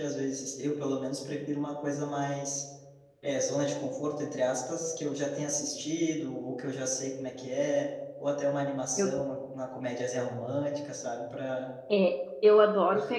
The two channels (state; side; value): identical; both; correlation 1.00